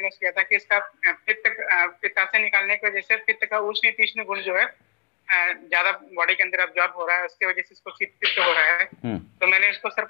किया था कि इसका पित्ताशय निकालने की वजह से पित्त का उष्ण तीक्ष्ण गुण जो है ज्यादा बॉडी के अंदर अब्जॉर्ब हो रहा है, उसकी वजह से इसको पित्त हो रहा है। तो मैंने इसको सर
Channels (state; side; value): quieter; right; 35.8 dB